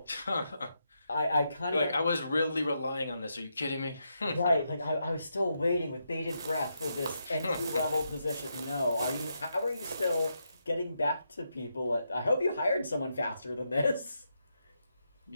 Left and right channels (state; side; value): inverted; both; correlation -0.83